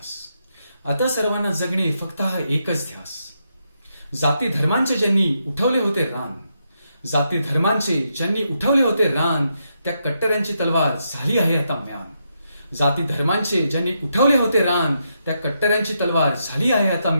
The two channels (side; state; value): both; inverted; correlation -0.81